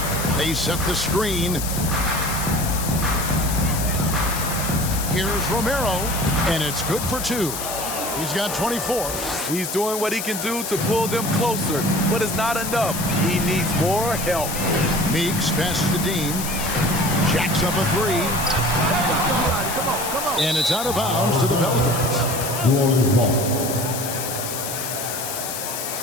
They set the screen. Here's Romero, and it's good for 2. He's got 24. He's doing what he can do to pull them closer, but it's not enough. He needs more help. Meeks passes to Dean. Jacks up a 3. And it's out of bounds to the Pelicans. New Orleans ball.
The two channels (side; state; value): left; noise; hiss, 5 dB below the sound